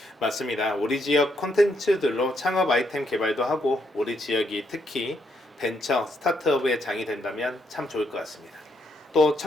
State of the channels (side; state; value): both; normal; correlation 0.76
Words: 맞습니다. 우리 지역 콘텐츠들로 창업 아이템 개발도 하고 우리 지역이 특히 벤처, 스타트업의 장이 된다면 참 좋을 것 같습니다. 또